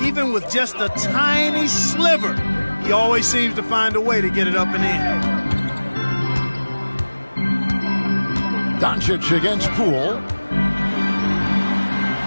Even with just a tiny sliver, he always seems to find a way to get it up and in. Doncic against Poole.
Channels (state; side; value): inverted; both; correlation -1.00